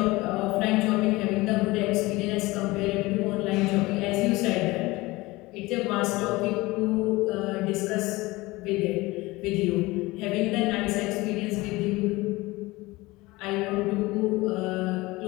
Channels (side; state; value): right; quieter; 21.1 dB